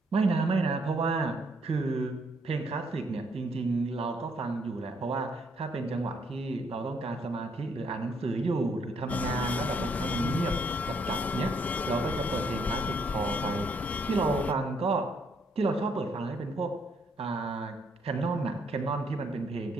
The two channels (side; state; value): both; normal; correlation 0.70